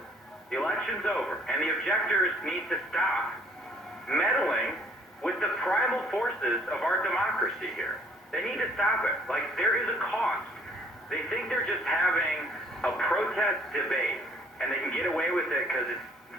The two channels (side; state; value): both; normal; correlation 0.60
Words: The election's over, and the objectors need to stop meddling with the primal forces of our democracy here. They need to stop it. Like, there is a cost. They think they're just having a protest debate, and they can get away with it because it's